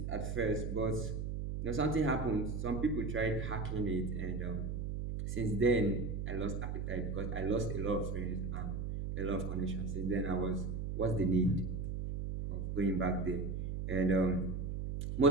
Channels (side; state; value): right; noise; hum, 3 dB below the sound